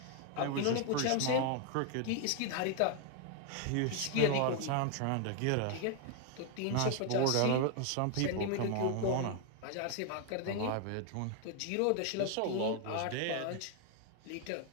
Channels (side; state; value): both; different; correlation 0.00